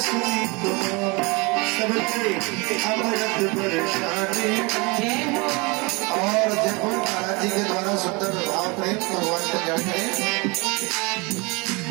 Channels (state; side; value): quieter; left; 27.3 dB